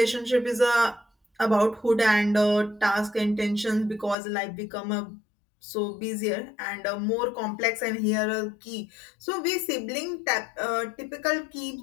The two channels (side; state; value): right; drops out; at 4.2 s